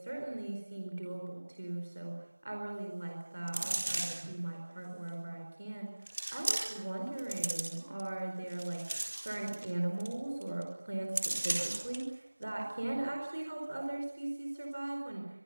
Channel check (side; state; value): both; inverted; correlation -1.00